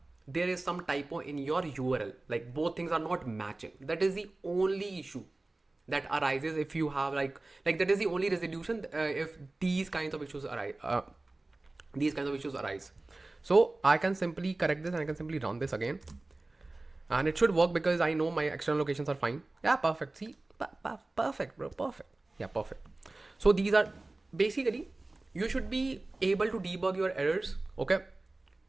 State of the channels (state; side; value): quieter; left; 3.0 dB